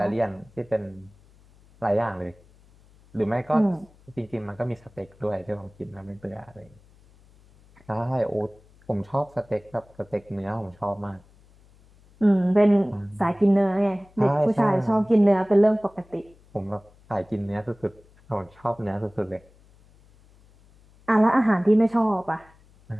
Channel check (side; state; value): left; noise; hum, 28 dB below the sound